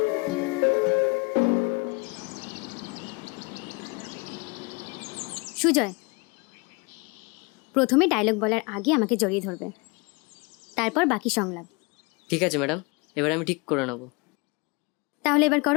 সুজয়, প্রথমে ডায়লগ বলার আগে আমাকে জড়িয়ে ধরবে, তারপর বাকি সংলাপ। ঠিক আছে ম্যাডাম, এবার আমি ঠিক করে নেব। তাহলে এবার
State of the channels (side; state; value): right; quieter; 28.3 dB